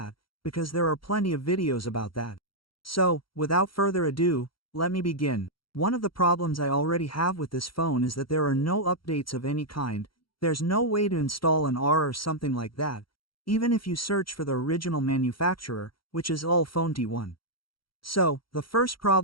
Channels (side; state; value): right; late; 0.74 ms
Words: because there are plenty of videos about that. So, without further ado, let me begin. One of the problems I already have with this phone is that there are no updates of any kind. There's no way to install an R or something like that, even if you search for the original manufacturer, which is Ulefone T1. So, the first